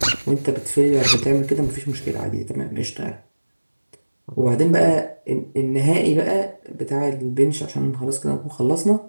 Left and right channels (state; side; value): inverted; both; correlation -1.00